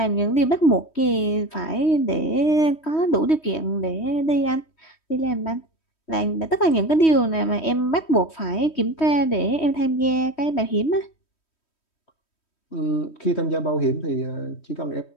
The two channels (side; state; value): right; late; 3.1 ms